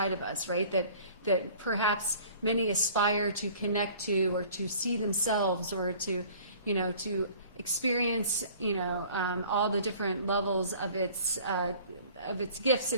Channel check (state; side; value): inverted; both; correlation -0.50